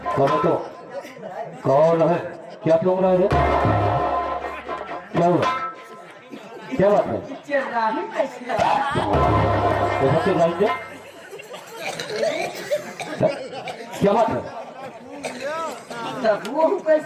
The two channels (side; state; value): both; identical; correlation 1.00